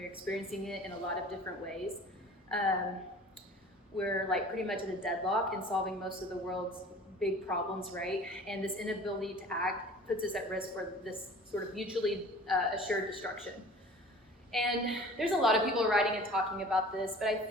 experiencing it in a lot of different ways. We're like pretty much at a deadlock in solving most of the world's big problems, right? And this inability to act puts us at risk for this sort of mutually assured destruction. And there's a lot of people writing and talking about this, but I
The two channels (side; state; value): both; normal; correlation 0.44